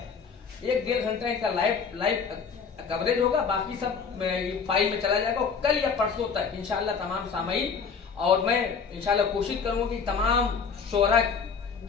1-1.5 घंटा इनका लाइव कवरेज होगा, बाकी सब फाइल में चला जाएगा। कल या परसों तक इंशाअल्लाह तमाम सामाईन, और मैं इंशाअल्लाह कोशिश करूँगा कि तमाम शोरा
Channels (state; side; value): quieter; right; 5.9 dB